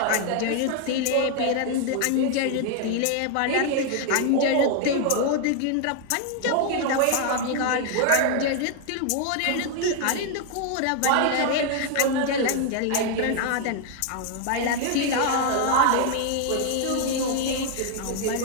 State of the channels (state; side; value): different; both; correlation 0.00